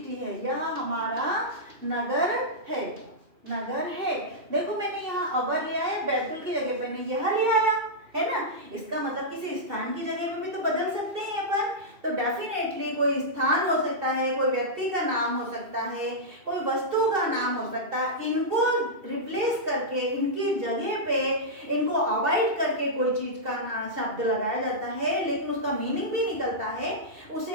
है, यह हमारा नगर है, नगर है। देखो मैंने यहाँ अवर लिया है, बैतुल की जगह पे मैंने यह ले आया है ना। इसका मतलब किसी स्थान की जगह पे भी तो बदल सकते हैं अपन। तो डेफिनेटली कोई स्थान हो सकता है, कोई व्यक्ति का नाम हो सकता है, कोई वस्तु का नाम हो सकता है। इनको रिप्लेस करके, इनकी जगह पे इनको अवॉइड करके कोई चीज का शब्द लगाया जाता है लेकिन उसका मीनिंग भी निकलता है,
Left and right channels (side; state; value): left; late; 2.7 ms